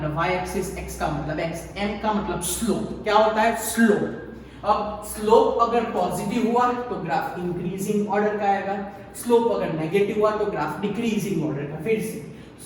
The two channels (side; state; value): both; identical; correlation 1.00